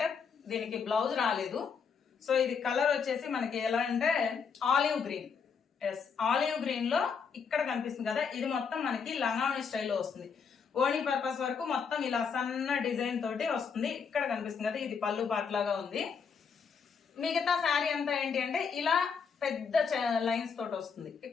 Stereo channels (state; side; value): quieter; right; 6.1 dB